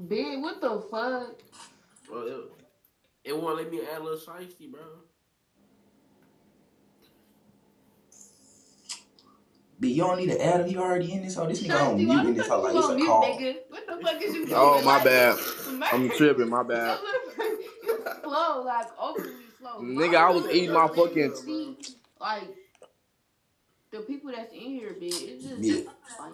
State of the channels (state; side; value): identical; both; correlation 1.00